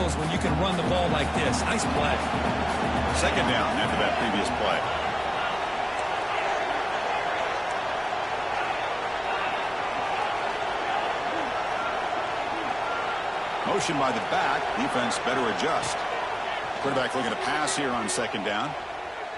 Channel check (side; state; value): both; identical; correlation 1.00